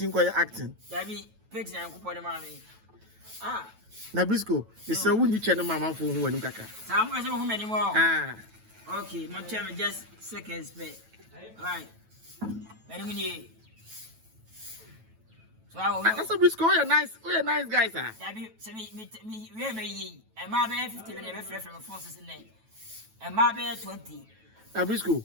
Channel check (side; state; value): left; late; 9.1 ms